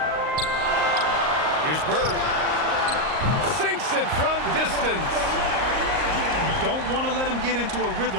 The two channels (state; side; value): late; left; 38 ms